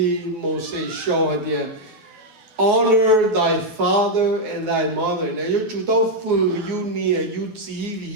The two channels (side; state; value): left; late; 12 ms